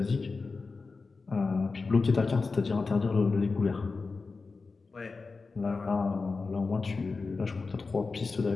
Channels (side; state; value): right; quieter; 4.2 dB